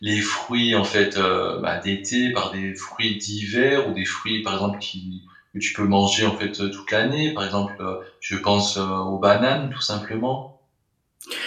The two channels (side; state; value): both; identical; correlation 1.00